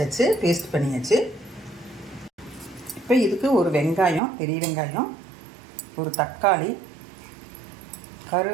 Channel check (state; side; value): drops out; left; at 4.2 s